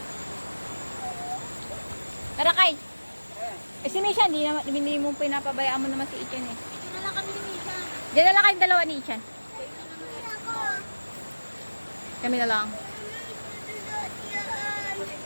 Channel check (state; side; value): inverted; both; correlation -1.00